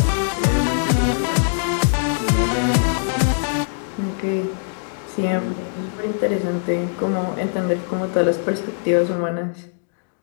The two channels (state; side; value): silent; right; digital silence